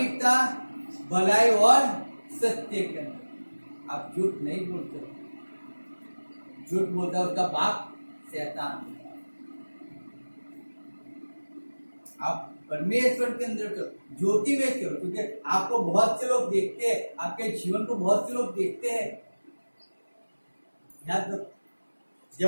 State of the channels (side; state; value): both; inverted; correlation -1.00